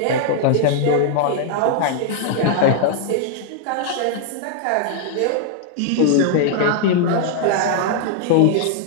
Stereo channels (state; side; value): different; both; correlation -0.01